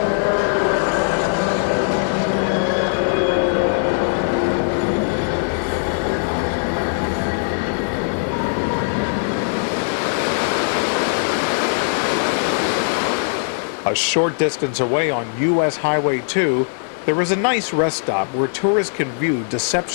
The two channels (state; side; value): silent; right; 55 dB below the other